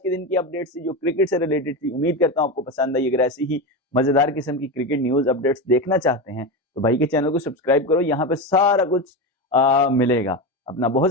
के दिन की अपडेट्स थी जो क्रिकेट से रिलेटेड थी। उम्मीद करता हूं आपको पसंद आई। अगर ऐसी ही मजेदार किस्म की क्रिकेट न्यूज अपडेट्स देखना चाहते हैं तो भाई के चैनल को सब्सक्राइब करो, यहाँ पे सारा कुछ मिलेगा। अपना बहुत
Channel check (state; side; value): normal; both; correlation 0.18